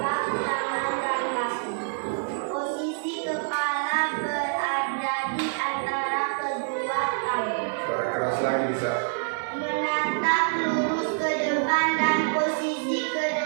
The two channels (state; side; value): silent; left; digital silence